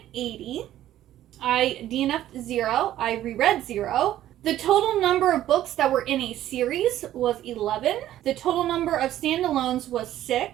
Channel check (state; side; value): quieter; left; 12.9 dB